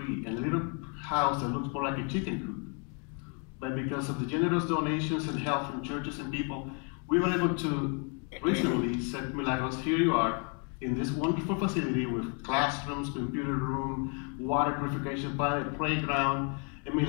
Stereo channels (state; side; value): quieter; right; 37.5 dB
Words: in a little house that looks more like a chicken coop. But because of the generous donations and help from churches and people, we were able to recently set Milagros, here you are, in this wonderful facility with classrooms, computer room, water purification plant, playground, and